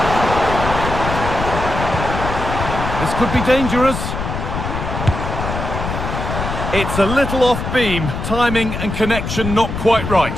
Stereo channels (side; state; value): left; noise; rumble, 5 dB below the sound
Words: This could be dangerous. It's a little off-beam, timing and connection not quite right.